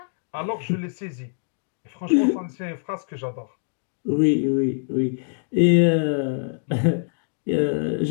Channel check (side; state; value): right; silent; digital silence